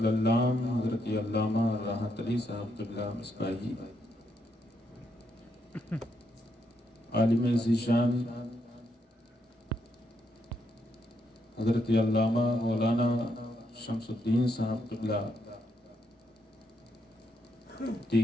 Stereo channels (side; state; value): both; normal; correlation 0.78